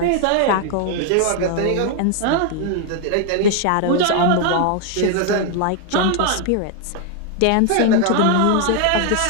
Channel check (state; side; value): different; both; correlation 0.00